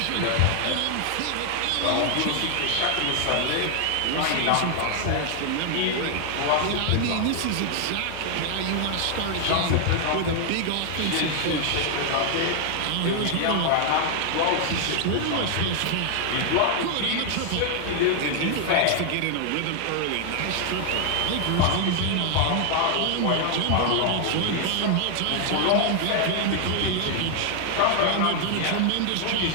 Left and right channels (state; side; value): different; both; correlation 0.00